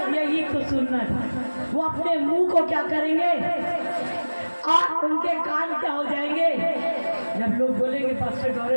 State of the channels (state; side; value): inverted; both; correlation -1.00